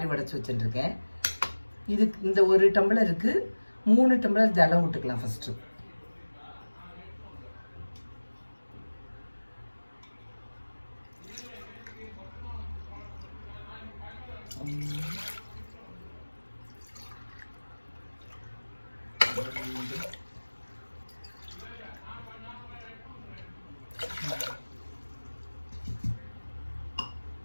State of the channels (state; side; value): inverted; both; correlation -1.00